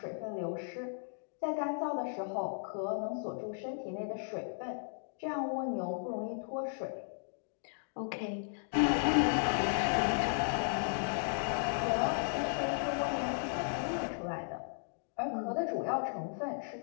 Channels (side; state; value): right; silent; digital silence